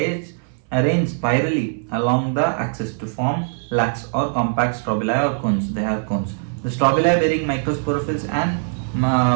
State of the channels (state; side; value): silent; left; 59 dB below the other